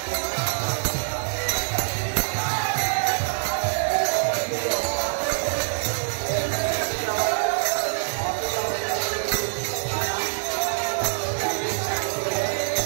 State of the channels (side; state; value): left; silent; 62 dB below the other